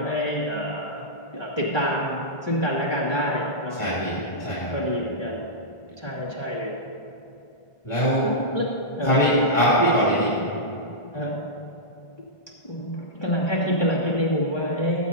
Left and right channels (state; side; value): late; right; 1.5 ms